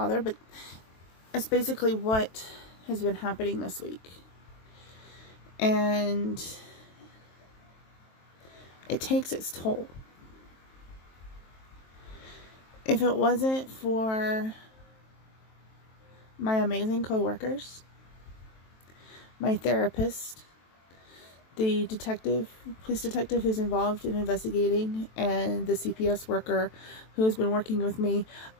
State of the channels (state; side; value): late; right; 23 ms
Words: but it's basically what has been happening this week. And it takes its toll. If it wasn't for my amazing coworkers, my therapist, the police detective who's involved in investigating, and the CPS worker who has been working with me,